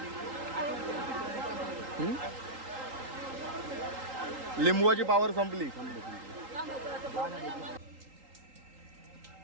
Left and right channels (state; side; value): late; left; 3.8 ms